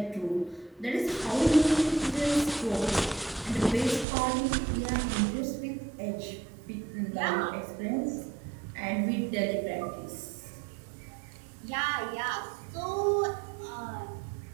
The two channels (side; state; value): left; drops out; at 4.0 s